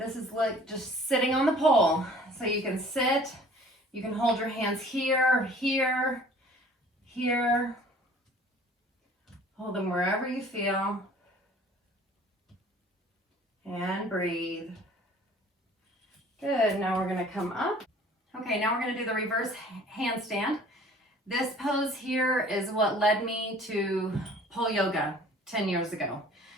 is like just sitting on the pole. So you can sit, you can hold your hands here, here, here. Hold them wherever you feel. And breathe. Good, now we're going to come up. Okay, now we're going to do the reverse handstand. This pose here is what led me to pole yoga 10 years ago,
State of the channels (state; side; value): normal; both; correlation 0.50